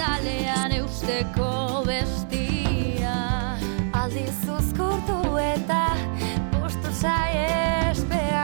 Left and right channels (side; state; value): left; silent; 62 dB below the other